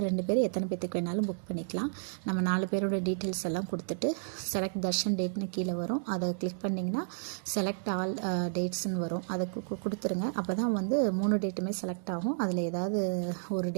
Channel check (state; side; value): silent; left; digital silence